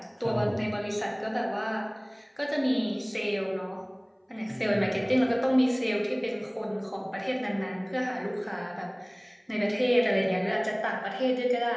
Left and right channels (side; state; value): both; identical; correlation 1.00